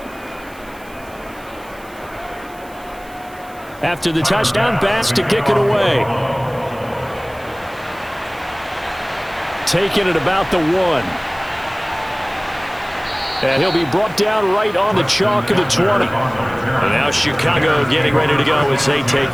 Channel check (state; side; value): noise; right; hiss, 24 dB below the sound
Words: After the touchdown, Bass to kick it away. Taking it about the 1. And he'll be brought down right on the chalk of the 20. And now Chicago getting ready to go as they take